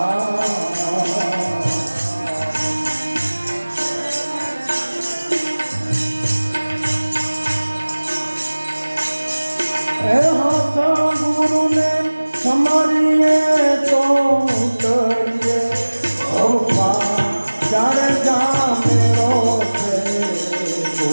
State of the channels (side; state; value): both; inverted; correlation -1.00